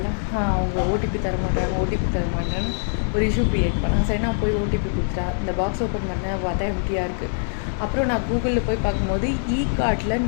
அவங்க ஓடிபி தர மாட்டேன்னு ஒரு இஷ்யூ க்ரியேட் பண்ணேன். சரி, நான் போய் ஓடிபி கொடுத்துட்டா. இந்த பாக்ஸ் ஓப்பன் பண்ணேன், பார்த்தா எம்டியாக இருக்குது. அப்புறம் நான் கூகுளில் போய் பார்க்கும்போது கார்ட்டில்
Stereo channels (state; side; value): silent; right; 62 dB below the other